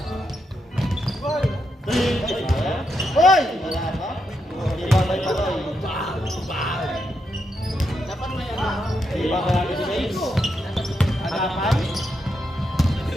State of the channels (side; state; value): both; normal; correlation 0.82